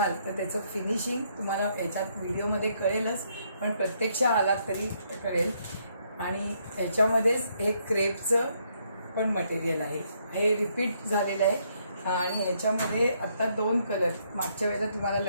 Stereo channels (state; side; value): inverted; both; correlation -0.72